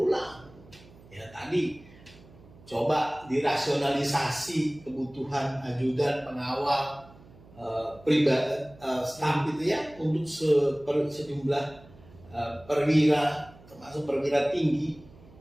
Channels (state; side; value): noise; right; hum, 23 dB below the sound